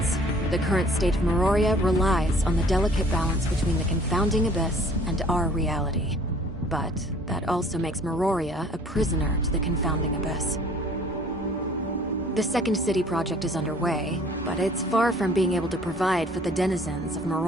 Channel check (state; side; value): normal; both; correlation 0.54